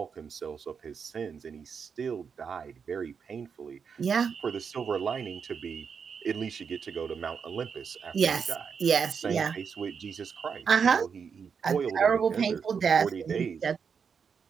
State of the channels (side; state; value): left; quieter; 6.3 dB